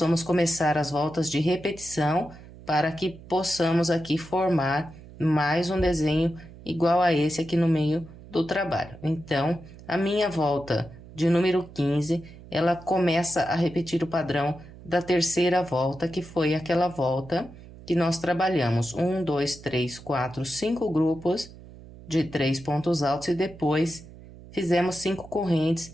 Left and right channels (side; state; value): right; noise; hum, 18 dB below the sound